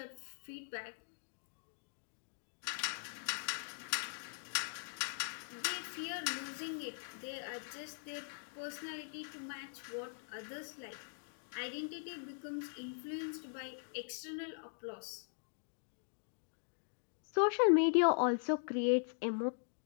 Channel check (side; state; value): right; silent; digital silence